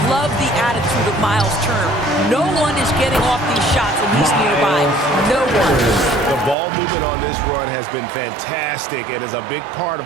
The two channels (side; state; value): left; drops out; at 6.6 s